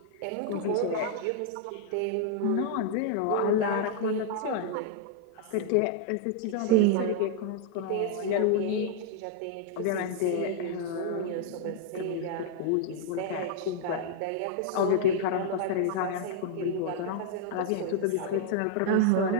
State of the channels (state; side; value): different; both; correlation -0.01